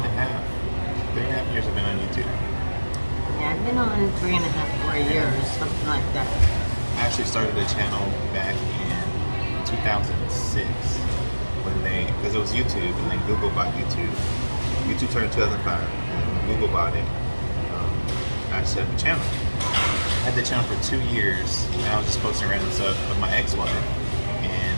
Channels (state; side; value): inverted; both; correlation -1.00